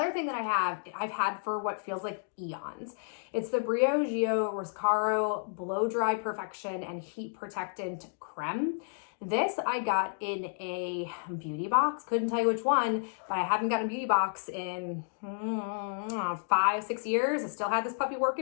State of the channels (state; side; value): silent; right; digital silence